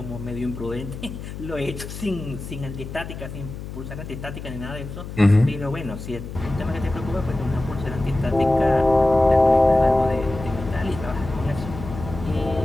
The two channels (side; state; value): left; noise; hum, 10 dB below the sound